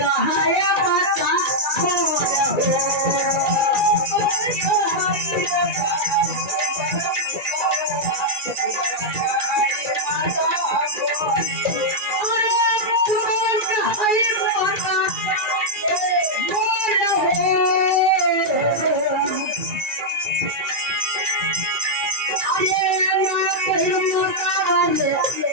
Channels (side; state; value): left; late; 2.4 ms